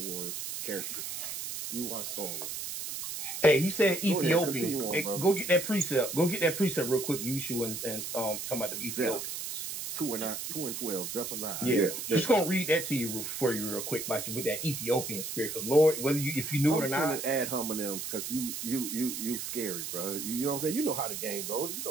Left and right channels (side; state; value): right; noise; hiss, 5 dB below the sound